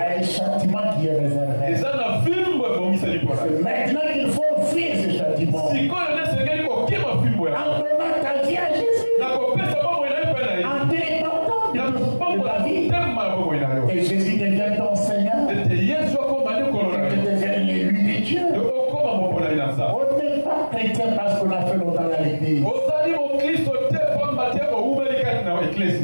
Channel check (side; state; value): both; inverted; correlation -1.00